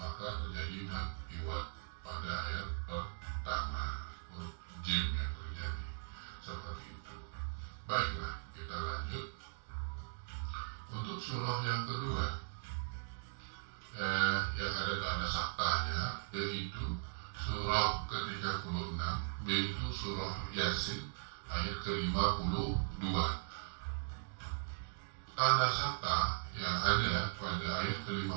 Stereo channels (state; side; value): silent; left; digital silence